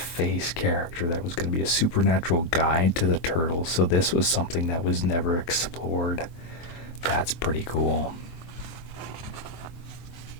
character, that was going to be a supernatural guide to the turtles. So this was something that was never explored. That's pretty cool.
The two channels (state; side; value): late; right; 23 ms